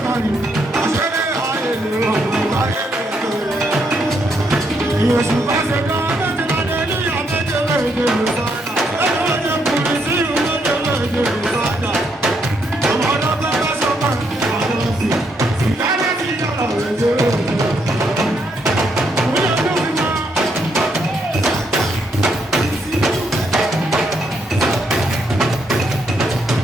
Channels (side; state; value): both; normal; correlation 0.75